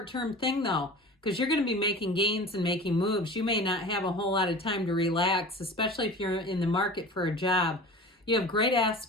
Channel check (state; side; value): normal; both; correlation 0.37